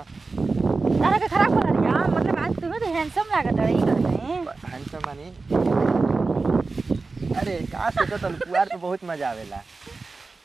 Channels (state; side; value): quieter; left; 3.9 dB